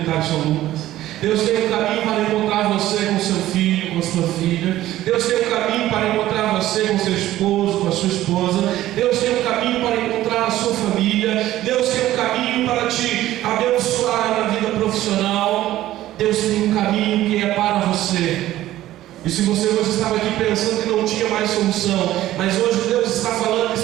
São Lucas. Deus tem um caminho para encontrar você com seu filho, com a sua filha. Deus tem um caminho para encontrar você com seu esposo, com a sua esposa. Deus tem um caminho para encontrar a sua família. Deus tem um caminho para te abençoar na vida profissional. Deus tem um caminho que é para você. E se você hoje estava aqui pensando que não tinha mais solução, mas hoje Deus está falando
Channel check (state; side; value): quieter; left; 14.5 dB